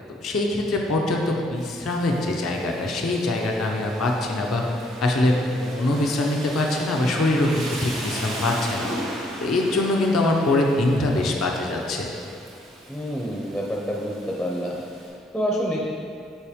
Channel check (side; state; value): both; normal; correlation 0.68